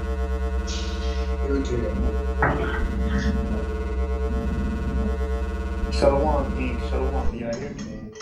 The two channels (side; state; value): both; identical; correlation 1.00